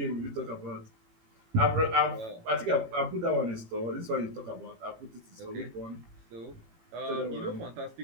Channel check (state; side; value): late; left; 18 ms